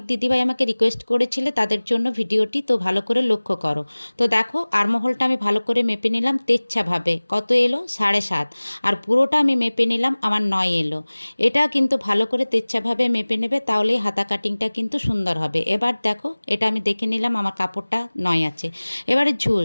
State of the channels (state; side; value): inverted; both; correlation -1.00